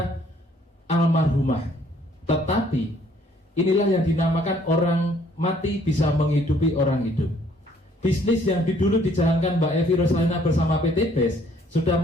almarhumah. Tetapi inilah yang dinamakan orang mati bisa menghidupi orang hidup. Bisnis yang dulu dijalankan Mbak Evi Rosalina bersama PT BES sudah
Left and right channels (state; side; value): normal; both; correlation 0.62